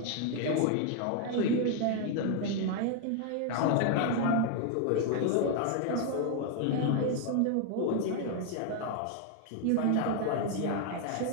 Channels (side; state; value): both; different; correlation 0.00